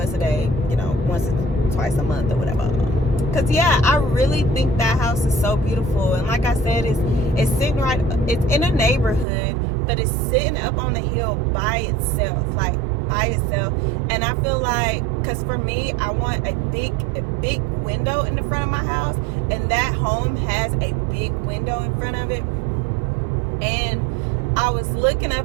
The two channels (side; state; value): left; drops out; at 9.2 s